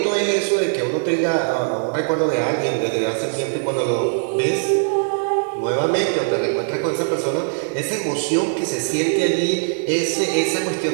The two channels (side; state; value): left; silent; digital silence